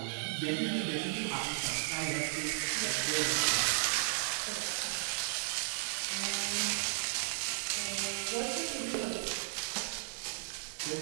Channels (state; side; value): silent; left; 55 dB below the other